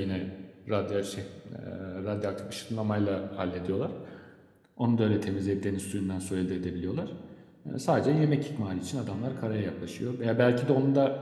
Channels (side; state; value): both; identical; correlation 1.00